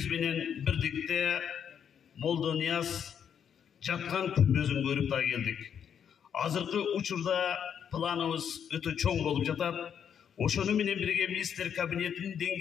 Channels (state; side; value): quieter; right; 8.2 dB